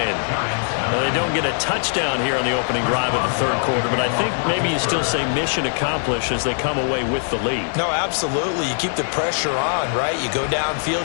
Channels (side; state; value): right; silent; 65 dB below the other